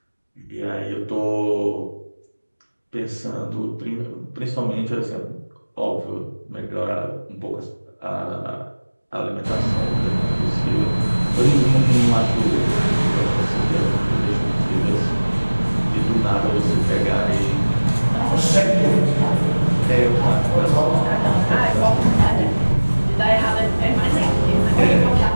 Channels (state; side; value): inverted; both; correlation -1.00